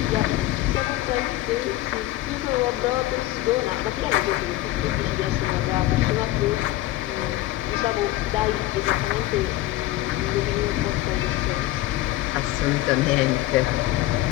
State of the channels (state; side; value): quieter; right; 16.1 dB